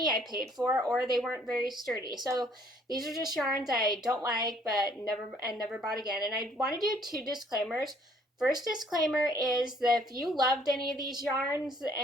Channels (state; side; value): normal; both; correlation 0.61